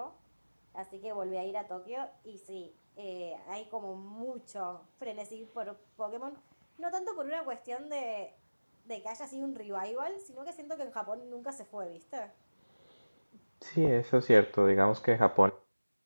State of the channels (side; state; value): both; inverted; correlation -1.00